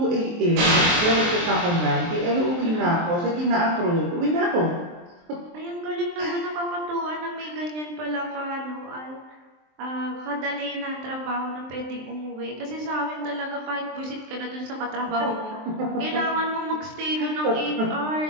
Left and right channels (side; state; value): left; late; 23 ms